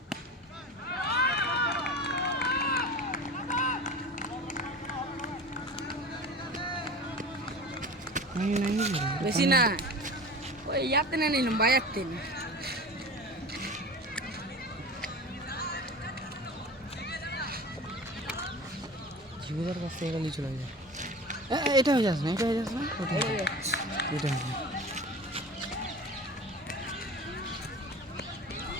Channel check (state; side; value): normal; both; correlation 0.35